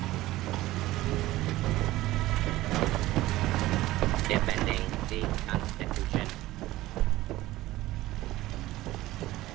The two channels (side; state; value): left; quieter; 16.9 dB